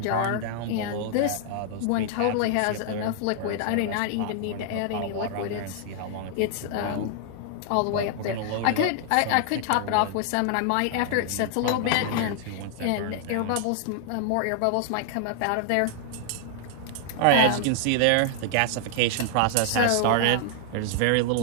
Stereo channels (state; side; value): different; both; correlation 0.00